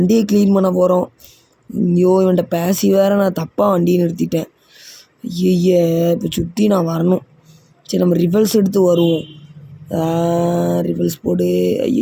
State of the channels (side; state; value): both; identical; correlation 1.00